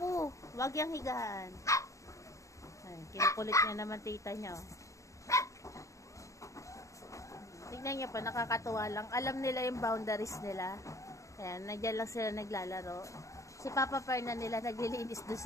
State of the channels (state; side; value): late; right; 0.15 ms